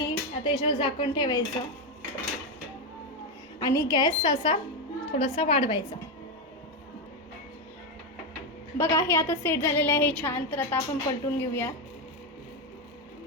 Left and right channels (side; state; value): both; normal; correlation 0.08